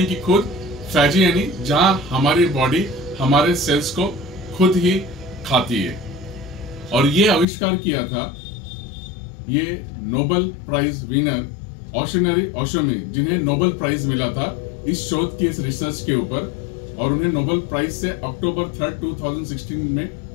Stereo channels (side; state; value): right; drops out; at 7.5 s